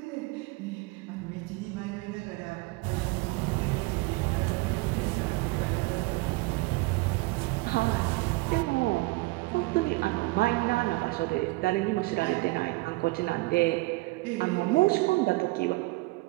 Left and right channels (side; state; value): left; quieter; 23.1 dB